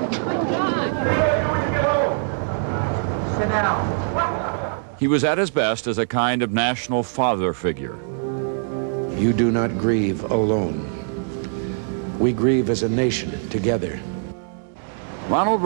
Sit down. He was at his best as a kind of national father figure. You do not grieve alone. We grieve as a nation together. Ronald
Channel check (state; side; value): silent; left; digital silence